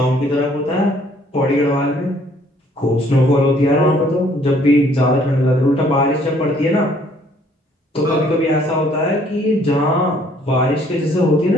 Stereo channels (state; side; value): normal; both; correlation 0.62